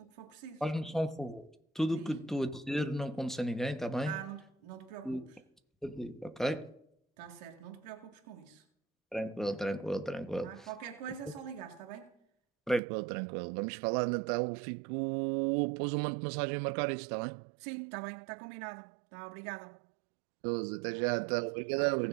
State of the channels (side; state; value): left; drops out; at 12.8 s